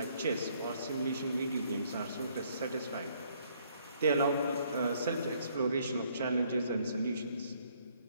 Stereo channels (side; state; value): both; inverted; correlation -0.66